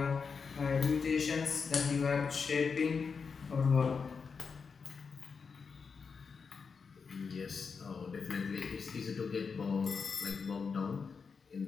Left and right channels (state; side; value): quieter; right; 5.4 dB